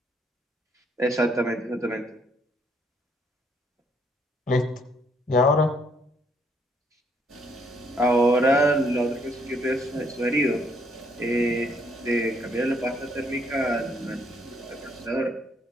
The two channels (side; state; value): both; normal; correlation 0.69